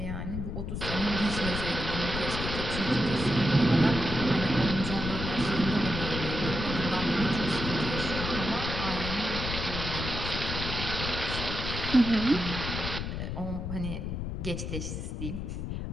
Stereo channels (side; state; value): left; noise; rumble, 4 dB below the sound